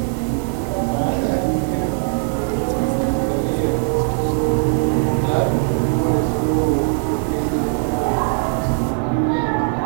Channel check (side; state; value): left; silent; 60 dB below the other